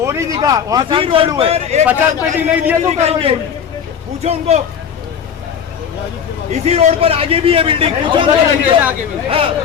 नहीं दिखा, वहाँ काम चालू है। 50 पेटी नहीं दिया तो करोगे, पूछो उनको। इसी रोड पर आगे भी है बिल्डिंग, पूछो उनको,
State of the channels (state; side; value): quieter; right; 7.7 dB